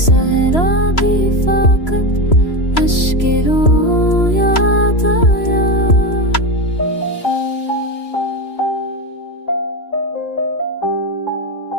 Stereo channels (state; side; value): late; right; 3.0 ms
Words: सहरा भी फाकत अश्के रो याद आया।